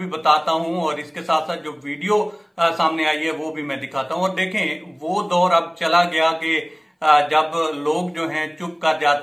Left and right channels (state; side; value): identical; both; correlation 1.00